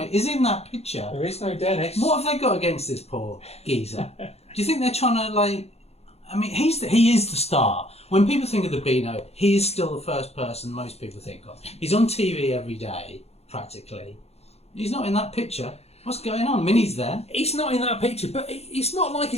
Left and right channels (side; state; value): right; late; 0.30 ms